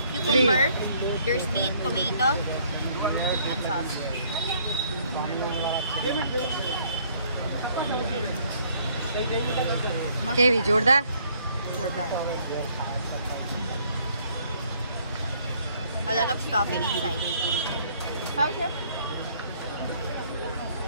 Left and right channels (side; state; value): both; inverted; correlation -0.63